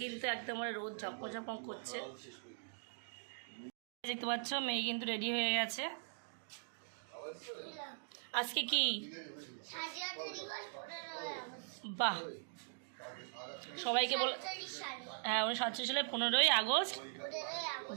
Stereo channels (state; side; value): silent; left; digital silence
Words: কিন্তু একদম রোদ ঝকমক করছে। দেখতে পাচ্ছ মেয়ে কিন্তু রেডি হয়ে গেছে। আজকে কি বাহ, সবাইকে বল। হ্যাঁ, 1947 সালে 15ই আগস্ট